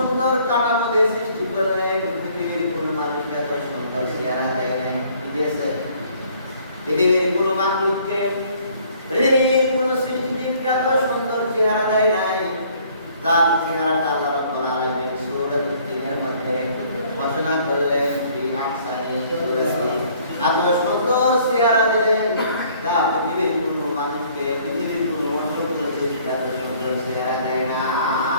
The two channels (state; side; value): inverted; both; correlation -0.59